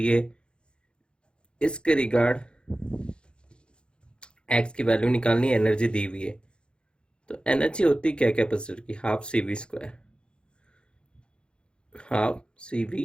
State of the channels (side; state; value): right; late; 0.053 ms